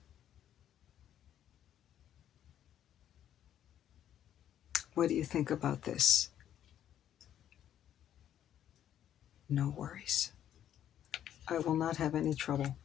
What do you think about this? No worries. I will not have any trouble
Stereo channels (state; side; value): quieter; right; 10.6 dB